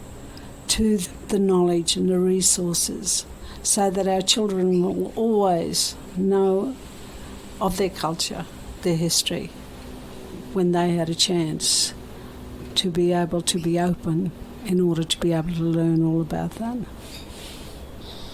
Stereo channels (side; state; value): both; identical; correlation 1.00